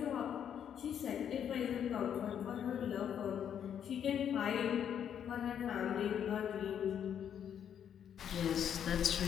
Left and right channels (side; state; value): right; quieter; 8.9 dB